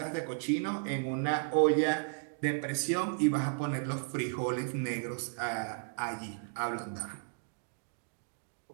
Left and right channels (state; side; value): silent; left; digital silence